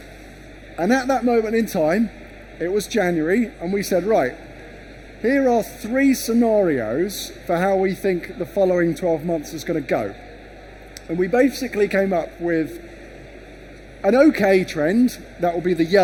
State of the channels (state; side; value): identical; both; correlation 1.00